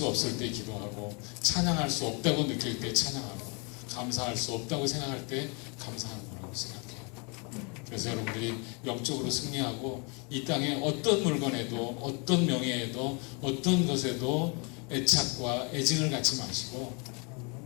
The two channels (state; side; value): quieter; right; 33.1 dB